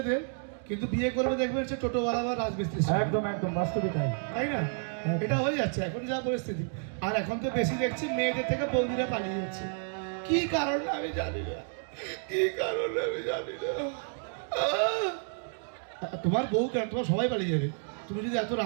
কিন্তু বিয়ে করবে দেখবেন সে টোটোওয়ালা বা রাজমিস্ত্রি, একদম একদম বাস্তবিক তাই। তাই না? এটা হয়ে যাচ্ছে এখন যা পরিস্থিতি। আর এখন তো বেশি দেখছি মেয়েদের থেকে বৌদিরা পালিয়ে যাচ্ছে। কি কারণ আমি জানি না, কি কারণ আমি জানি না। তোমার বউ কেন, তোমার সবাই পালিয়ে যাবে। তুমি যদি এত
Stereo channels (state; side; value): silent; left; 58 dB below the other